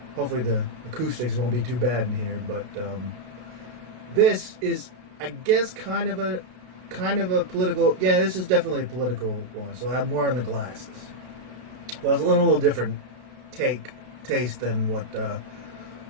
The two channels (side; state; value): left; late; 32 ms